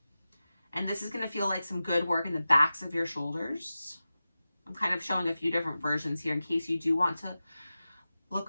And this is going to feel like some good work in the backs of your shoulders. I'm kind of showing a few different versions here in case you do want to look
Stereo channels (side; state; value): both; inverted; correlation -0.94